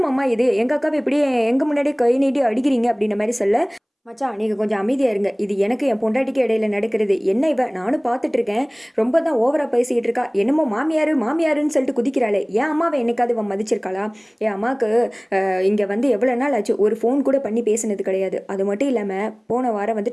மாமா இது, எங்கள் அக்காவை இப்படி எங்கள் முன்னாடியே கை நீட்டி அடிக்கிறீங்க அப்படின்ற மாதிரி சொல்ல மச்சான் நீங்கள் கொஞ்சம் அமைதியாக இருங்க, இது எனக்கு என் பொண்டாட்டிக்கு இடையில நடக்கிறது, என்ன இவ நானும் பார்த்துட்டு இருக்கேன், ரொம்ப தான் ஓவராக பேசிக்கிட்டு இருக்கா, என்னமோ மாமியார் மாமியாருன்னு சொல்லிட்டு குதிக்கிறாளே, என் அம்மாவை என்னைக்காவது அவன் மதிச்சிருக்காளா, என் அம்மாவுக்கு இங்கே வந்து எவ்வளோ நாள் ஆச்சு ஒரு ஃபோன் கூட பண்ணி பேசினது கிடையாது, அது மட்டும் இல்லாமல் போன வாரம்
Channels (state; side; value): identical; both; correlation 1.00